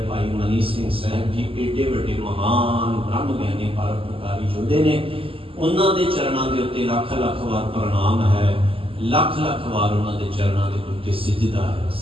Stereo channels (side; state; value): left; late; 0.26 ms